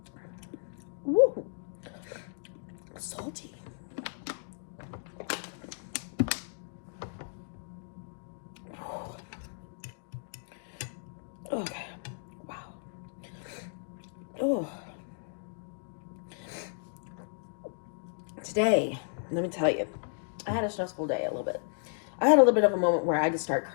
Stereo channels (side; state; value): right; silent; digital silence